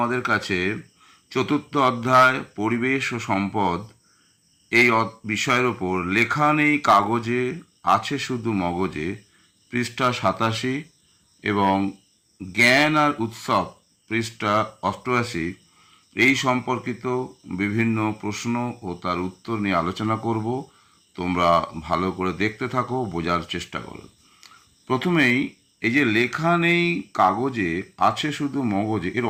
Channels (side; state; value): both; identical; correlation 1.00